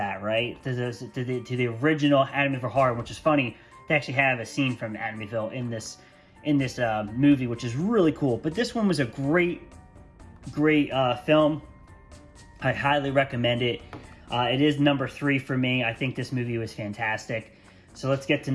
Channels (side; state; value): both; identical; correlation 1.00